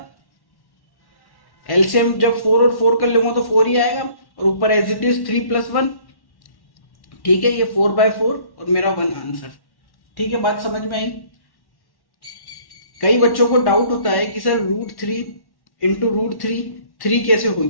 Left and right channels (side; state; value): right; late; 1.1 ms